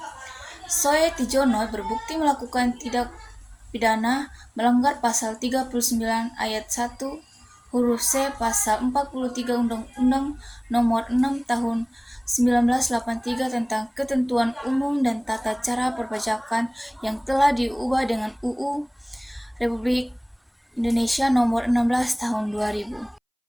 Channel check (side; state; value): both; identical; correlation 1.00